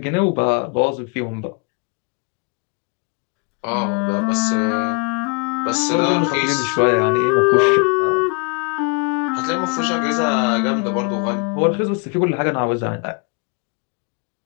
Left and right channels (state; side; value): quieter; right; 32.4 dB